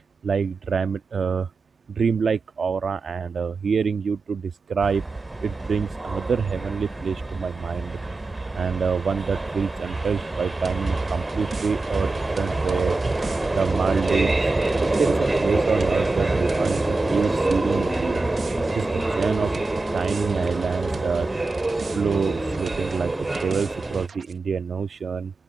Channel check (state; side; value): quieter; left; 3.7 dB